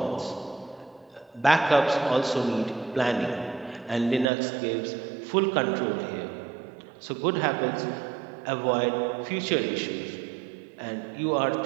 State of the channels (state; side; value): drops out; left; at 4.3 s